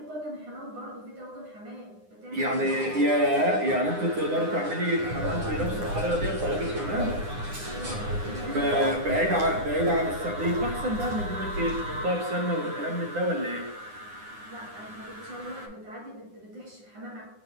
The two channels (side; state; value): left; late; 9.8 ms